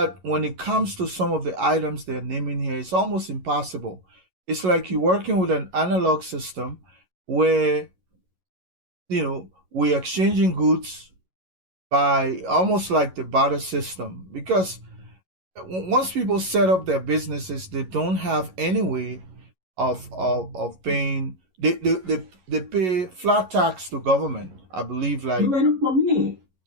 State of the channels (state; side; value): late; left; 11 ms